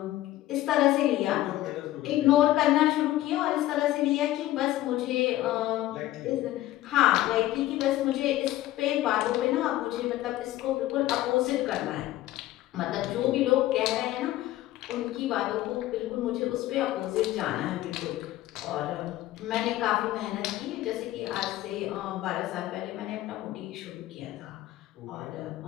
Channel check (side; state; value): right; quieter; 15.2 dB